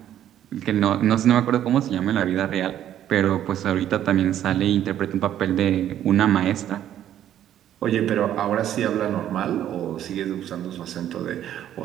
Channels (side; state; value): left; quieter; 11.2 dB